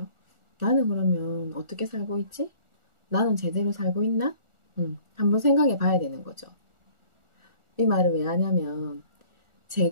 나는 그러면 어떻게 살고 있지? 나는 제대로 살고 있나? 한번 생각해 봐야 되는 거죠. 이 말을 왜 하냐면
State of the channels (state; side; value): late; left; 1.4 ms